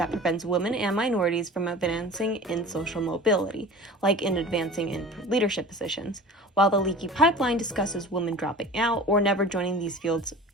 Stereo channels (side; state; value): both; normal; correlation 0.39